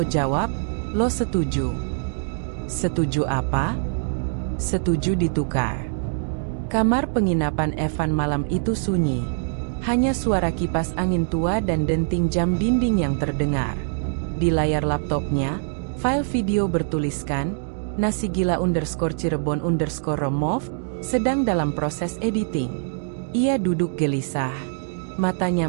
jawab, lo setuju. Setuju apa? Setuju ditukar. Kamar penginapan Evan malam itu sunyi. Hanya suara kipas angin tua dan denting jam dinding yang terdengar. Di layar laptopnya, file video bertuliskan, Nasi Gila _Cirebon_remove, sedang dalam proses editing. Ia duduk gelisah.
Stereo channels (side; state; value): left; silent; digital silence